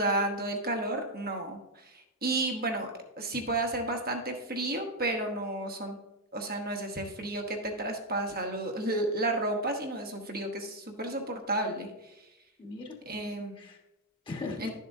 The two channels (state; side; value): normal; both; correlation 0.02